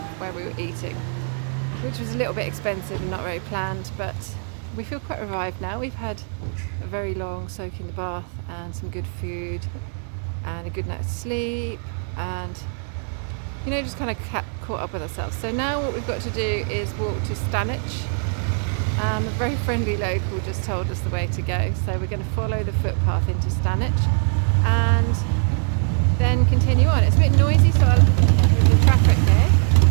where we were eating, which was a little bit expensive and not very planned, but we feel quite revived now. We've had a very long soak in the bath and some good food and a good night's sleep, and you know, just kind of caught up with ourselves. So now what we've got to do is walk to Stanwich. A very friendly local just told us the way to go, so we're going to follow the footpath into Stanwich and then continue on. It's a bit noisy, so with the traffic here,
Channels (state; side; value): silent; left; 58 dB below the other